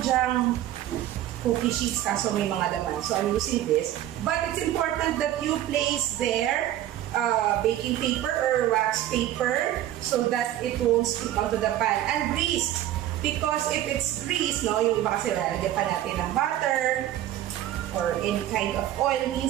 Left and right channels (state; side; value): quieter; left; 12.9 dB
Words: dyang cookie sheets kaso may mga laman. So, I'm using this. But it's important that you place there baking paper or wax paper so that it won't stick onto the pan. And grease. Because if it's grease, no, yung iba kasi lalagyan pa natin ng butter or any kind of oil,